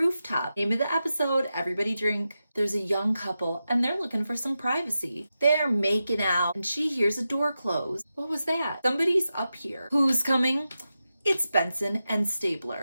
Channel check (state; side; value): inverted; both; correlation -0.91